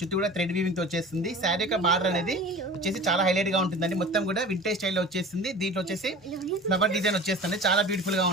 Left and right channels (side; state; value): both; normal; correlation 0.38